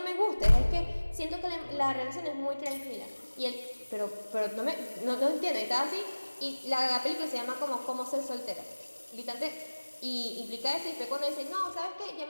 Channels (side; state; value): both; inverted; correlation -1.00